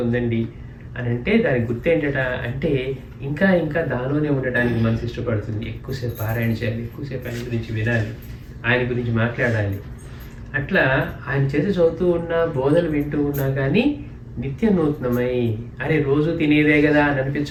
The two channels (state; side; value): identical; both; correlation 1.00